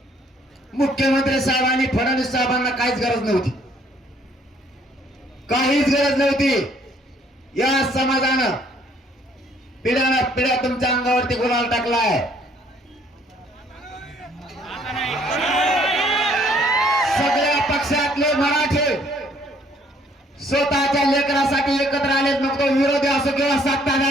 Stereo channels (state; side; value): normal; both; correlation 0.63